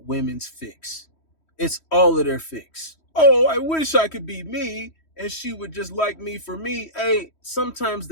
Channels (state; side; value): late; right; 3.1 ms